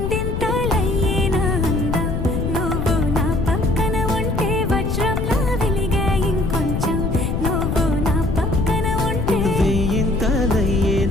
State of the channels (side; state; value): left; noise; rumble, 1 dB below the sound